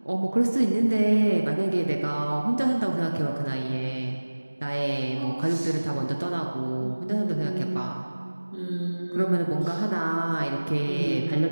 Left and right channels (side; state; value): both; inverted; correlation -1.00